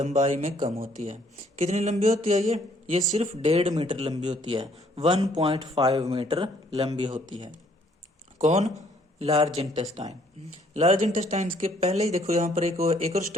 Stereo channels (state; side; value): normal; both; correlation 0.64